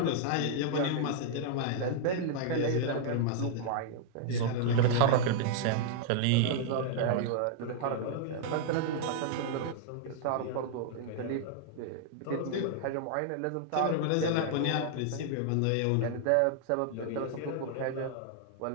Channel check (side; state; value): both; different; correlation -0.01